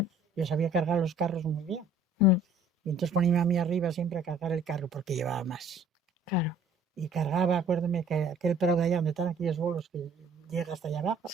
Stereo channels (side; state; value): both; normal; correlation 0.56